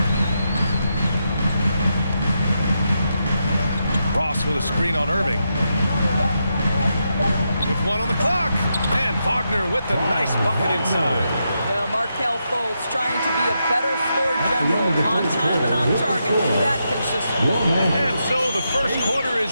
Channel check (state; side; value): inverted; both; correlation -0.84